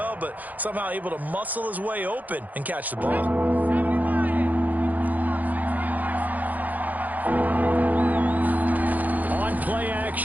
but somehow able to muscle his way open and catch the ball. Play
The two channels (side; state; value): left; late; 0.081 ms